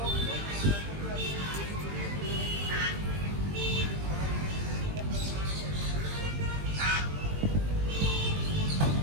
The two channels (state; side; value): late; left; 20 ms